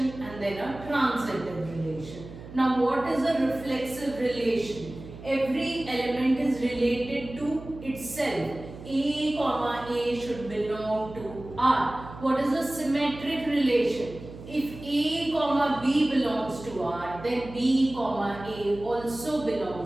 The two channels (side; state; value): right; noise; hum, 15 dB below the sound